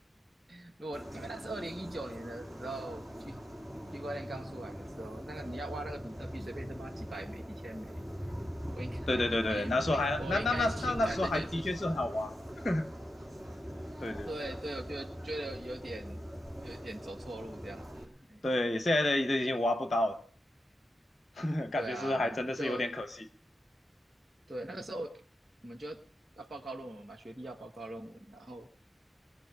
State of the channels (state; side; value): normal; both; correlation 0.88